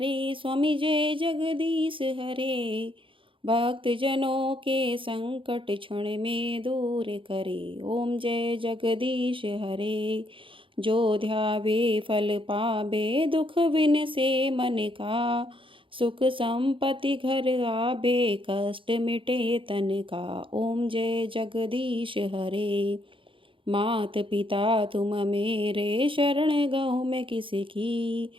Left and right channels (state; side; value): late; left; 0.25 ms